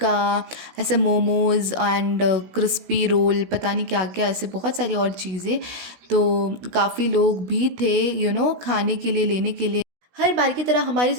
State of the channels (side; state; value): left; late; 16 ms